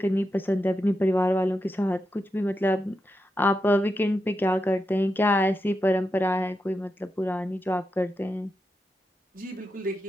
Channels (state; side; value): normal; both; correlation 0.87